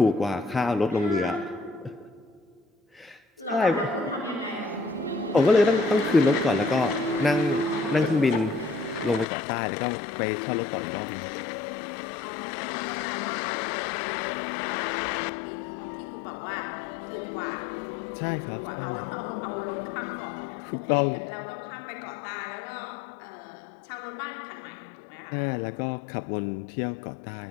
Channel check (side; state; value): right; drops out; at 9.2 s